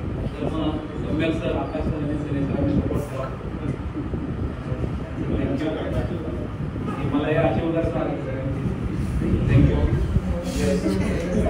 तर मग सम्यक सर, आकाश सर आणि सनी सर आम्ही सपोर्ट करा. मला हे आशीर्वाद थँक्यू.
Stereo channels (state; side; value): identical; both; correlation 1.00